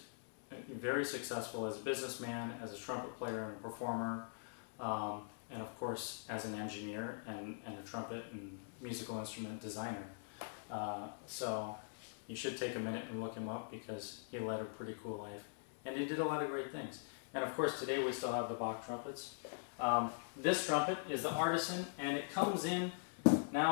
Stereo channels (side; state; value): right; silent; digital silence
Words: very successful as a businessman, as a trumpet player and a performer, and of course as an engineer and a trumpet and musical instrument designer. So you should take a minute and look him up, because he led a pretty cool life. And he did a lot of great things. And of course today we still have the Bach trumpets. This trumpet is the Artisan, and it comes in